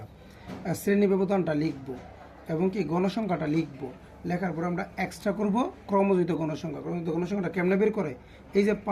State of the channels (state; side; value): identical; both; correlation 1.00